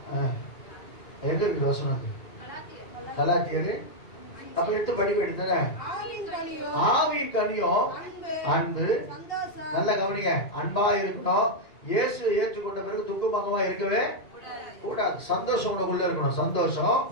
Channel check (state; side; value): late; right; 1.9 ms